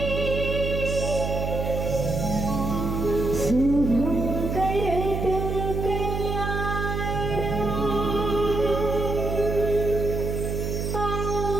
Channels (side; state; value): right; noise; hum, 2 dB below the sound